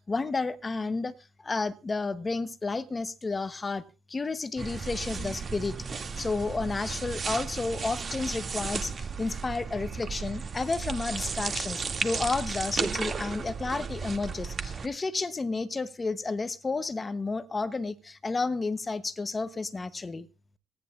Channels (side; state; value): both; normal; correlation 0.91